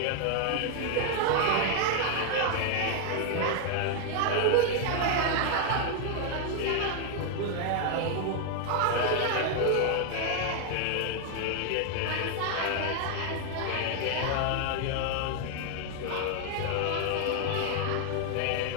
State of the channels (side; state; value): both; different; correlation 0.00